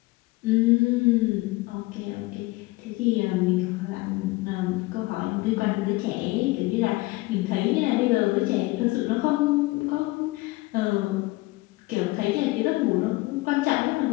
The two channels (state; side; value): quieter; right; 21.6 dB